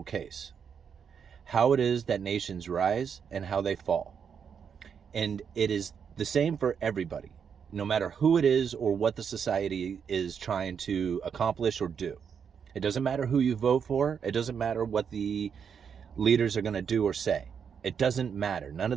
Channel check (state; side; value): quieter; left; 7.1 dB